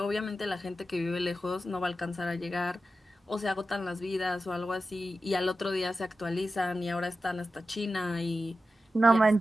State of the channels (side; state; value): both; normal; correlation 0.92